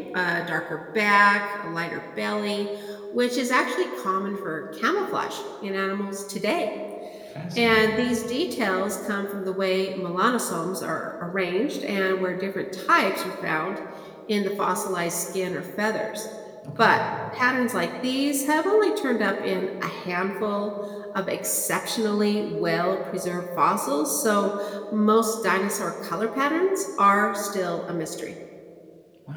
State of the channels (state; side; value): identical; both; correlation 1.00